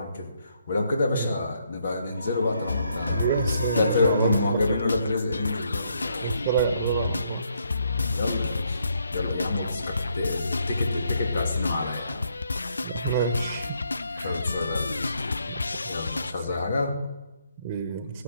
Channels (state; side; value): inverted; both; correlation -0.73